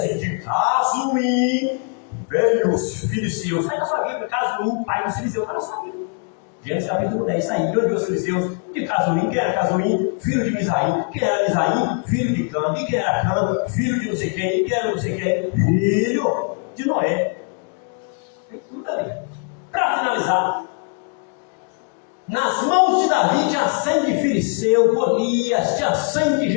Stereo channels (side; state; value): right; quieter; 39.4 dB